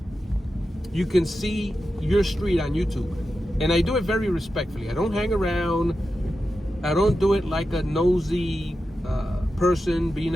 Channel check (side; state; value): both; normal; correlation 0.91